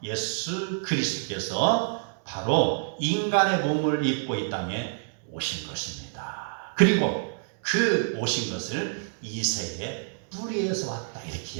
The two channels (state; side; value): silent; left; digital silence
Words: 예수 그리스도께서 바로 인간의 몸을 입고 이 땅에 오신 것입니다. 그리고 그 오신 것을 이새의 뿌리에서 왔다, 이렇게